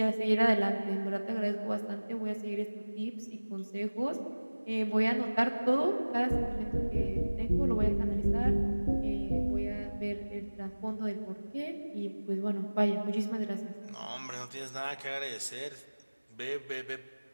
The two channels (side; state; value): both; inverted; correlation -1.00